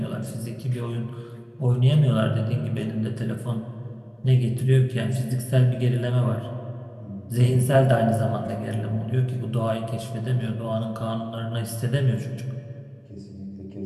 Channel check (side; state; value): both; identical; correlation 1.00